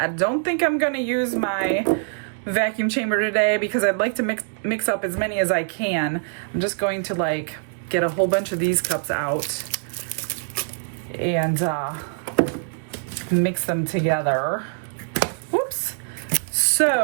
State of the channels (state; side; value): silent; left; digital silence